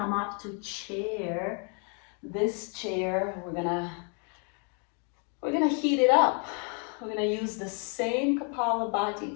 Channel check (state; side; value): quieter; right; 39.1 dB